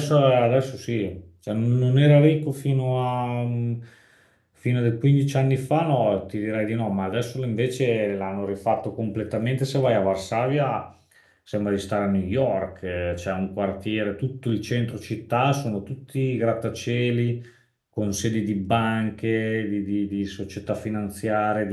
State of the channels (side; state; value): both; identical; correlation 1.00